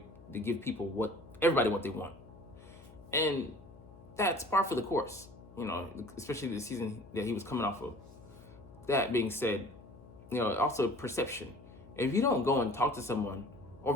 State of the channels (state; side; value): noise; left; hum, 20 dB below the sound